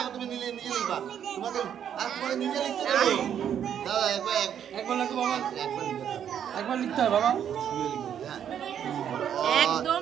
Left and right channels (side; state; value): left; quieter; 9.1 dB